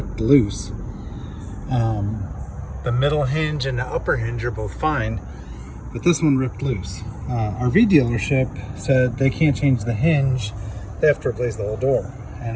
loose. The middle hinge and the upper hinge are both fine, but this one ripped loose. RV dealership said they can't change the hinge, they have to replace the whole door.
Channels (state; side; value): identical; both; correlation 1.00